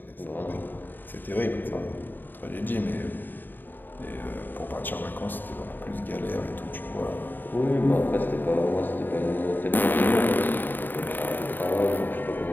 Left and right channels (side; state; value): right; late; 0.091 ms